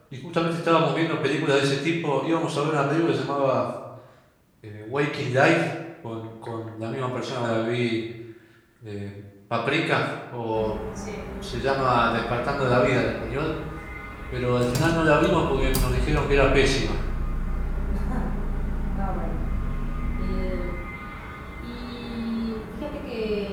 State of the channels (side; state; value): both; identical; correlation 1.00